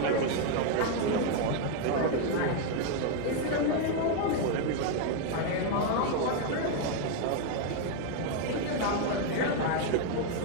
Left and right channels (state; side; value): different; both; correlation 0.01